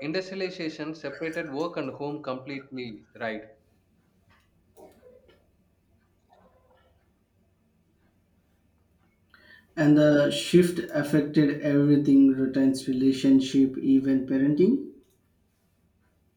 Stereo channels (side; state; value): both; identical; correlation 1.00